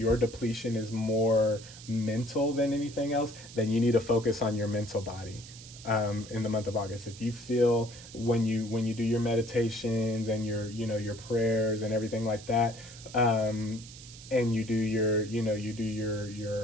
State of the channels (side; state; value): right; noise; hiss, 17 dB below the sound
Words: depletion is more mental than anything else, then you need to focus on your mental body in the month of August. If you feel when you do your meditations and your prayers and everything like that, and you do your